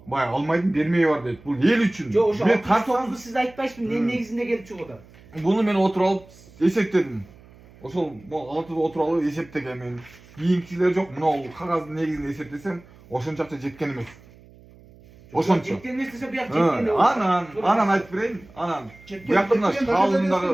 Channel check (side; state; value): right; noise; hum, 24 dB below the sound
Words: Bay almaydım bermeye var deyip. Bu el üçün. Jo oşo Men 609'du siz aytpaysiz ne negizinde gelip çıkıda. bunu men oturup alıp esepledim. Oşol altıda oturup alıp eseptegen men. Kийинкилер жок. Мына кагаздын негизинде эсептесем, ошончакча жеткен эмес. Ошончо. Жеткен эмес десе буяк жеткен. Анан айтып берейин. Анан буякта мына